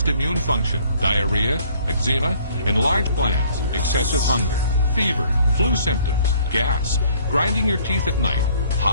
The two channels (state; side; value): inverted; both; correlation -0.58